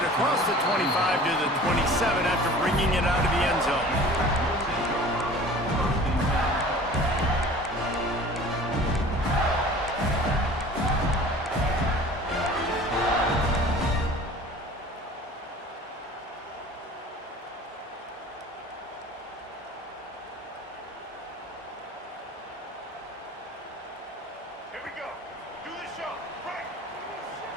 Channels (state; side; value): normal; both; correlation 0.44